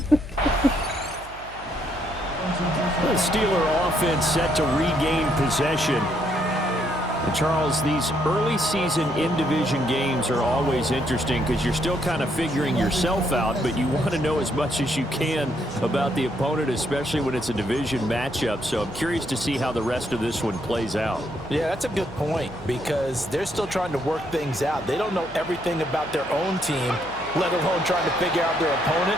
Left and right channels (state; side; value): noise; right; hum, 19 dB below the sound